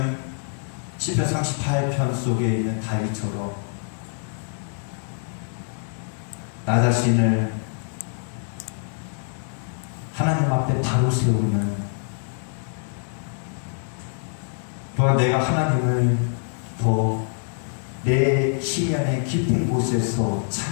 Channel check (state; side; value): silent; right; digital silence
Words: 시편 38편 속에 있는 다윗처럼 나 자신을 하나님 앞에 바로 세우는, 또한 내가 하나님을 더 내 심연의 깊은 곳에서